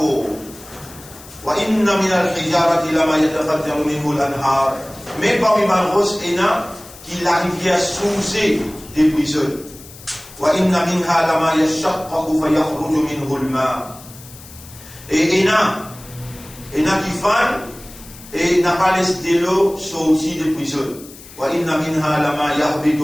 وإن من الحجارة لما يتفجر منه الأنهار. Mais parmi Malros, il y a qui la rivière sousée des prisons. وإن منها لما يشقق فيخرج منه الماء. Et il y a qui font et n'a pas laissé l'eau sortir des prisons. وإن منها لما يهبط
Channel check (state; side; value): noise; left; hiss, 19 dB below the sound